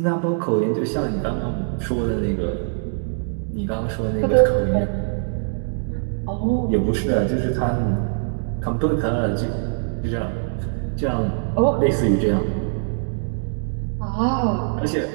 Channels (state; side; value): silent; left; digital silence